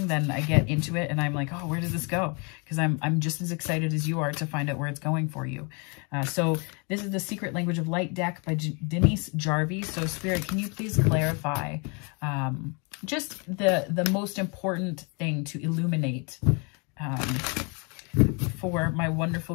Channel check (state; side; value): quieter; right; 33.1 dB